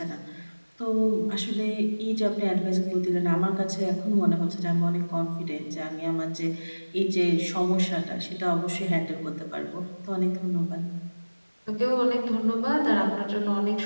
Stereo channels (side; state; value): both; inverted; correlation -1.00